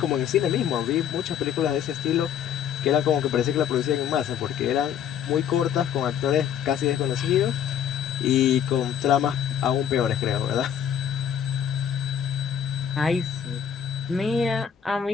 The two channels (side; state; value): right; quieter; 8.7 dB